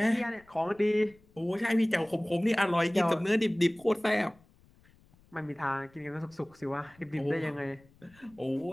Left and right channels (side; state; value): left; noise; rumble, 29 dB below the sound